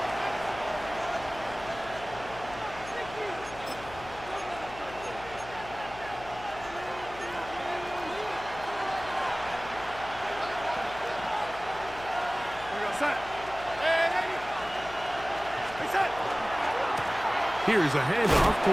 Set. Reset. Here's a handoff to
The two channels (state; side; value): noise; left; hum, 16 dB below the sound